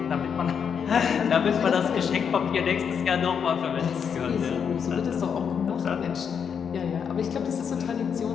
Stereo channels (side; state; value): right; quieter; 7.2 dB